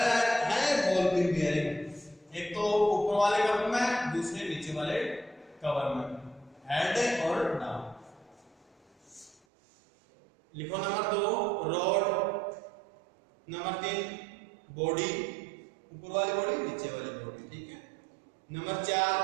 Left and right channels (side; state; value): left; drops out; at 9.4 s